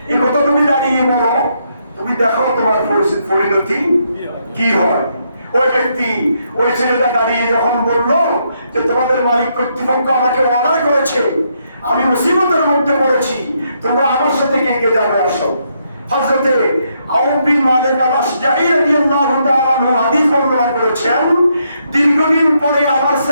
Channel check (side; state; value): both; inverted; correlation -0.76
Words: এই কথা তুমি দাঁড়িয়ে বলো, তুমি দেখো তোমার পরিণতি কি হয়। ওই ব্যক্তি, ওই ছেলেটা দাঁড়িয়ে যখন বললো যে তোমাদের মালিক কর্তৃপক্ষ আমাকে অর্ডার করেছে, আমি মুসিবতের মধ্যে পড়েছি, তোমরা আমার সাথে কে কে যাবে আসো। হযরতে আউফ বিন মালিক আল-আশজাঈ রাদিয়াল্লাহু তাআলা আনহু হাদিস বর্ণনা করেছেন, দীর্ঘদিন পরে আমার